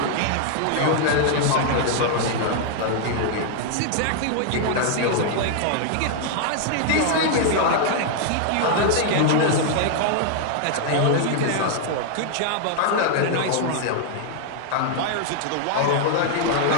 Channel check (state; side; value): different; both; correlation 0.00